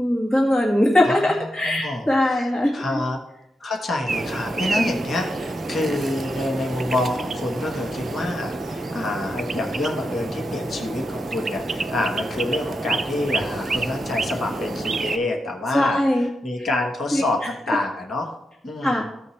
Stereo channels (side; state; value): both; normal; correlation 0.86